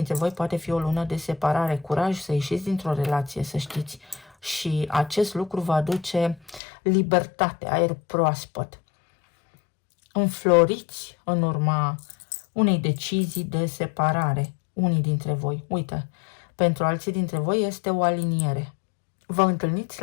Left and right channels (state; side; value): drops out; right; at 6.6 s